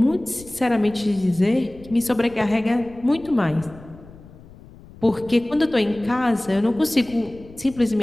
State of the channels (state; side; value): noise; left; rumble, 20 dB below the sound